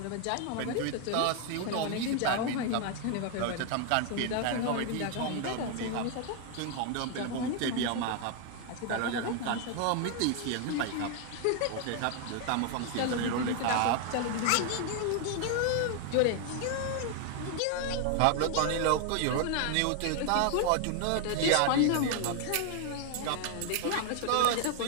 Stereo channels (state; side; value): different; both; correlation 0.00